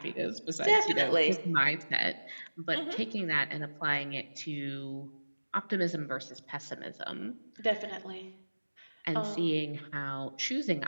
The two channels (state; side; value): inverted; both; correlation -1.00